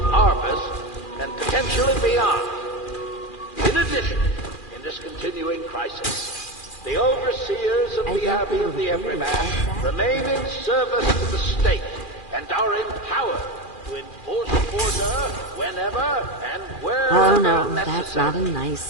harvest and potentially beyond. In addition, in this continuing crisis, the overseers of the Abbey of the Everyman remain in service to the state and are empowered to enforce order whenever and wherever Oh no, necessary. that's not a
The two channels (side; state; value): right; late; 2.4 ms